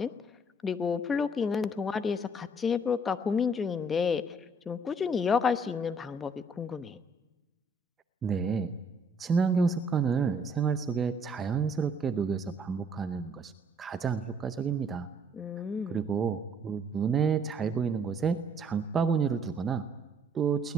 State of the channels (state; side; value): normal; both; correlation 0.63